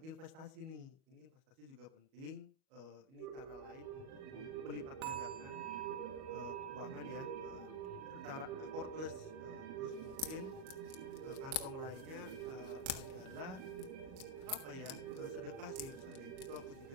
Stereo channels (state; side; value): late; left; 37 ms